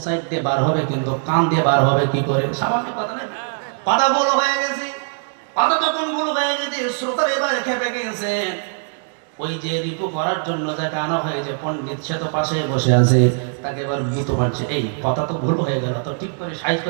সাইড দিয়ে বার হবে, কিন্তু কান দিয়ে বার হবে কি করে? স্বাভাবিক কথা না? কথা ভুল হয়ে গেছে। কথা যখন ভুল হয়ে গেছে, শ্রোতারা এবার খেপে গেছে। ওই যে রিপু করার জন্য যাকে আনা হয়েছে পণ্ডিত, সে তো পাশে বসে আছে, তাকে এবার ভীত মারছে, এই কথা তো ভুল হয়ে গেল, তো ঠিক করে সাইজ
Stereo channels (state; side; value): silent; left; 59 dB below the other